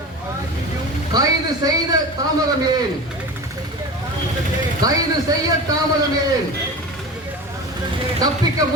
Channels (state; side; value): normal; both; correlation 0.31